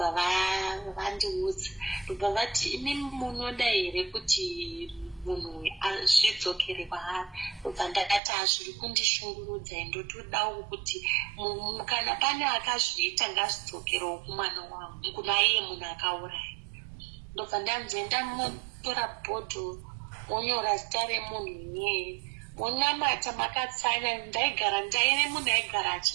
vandiudza, ndobva vati imi munoda here kuti munhu azvidzokere kwaari. Ndobva ndakati hazviri kundishungurudza, ndotodawo kuti kana pane akazviita ngazvidzokerewo kumwana wangu, kuna iye munhu akauraya. Ndobva ndanzi ndamutora bhodho monyora zita remunhu iyeye, monamata makatsanya. Ndaive munhu aigara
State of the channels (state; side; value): drops out; left; at 8.2 s